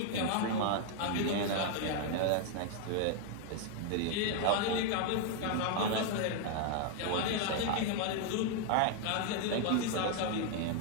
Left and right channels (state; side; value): different; both; correlation 0.00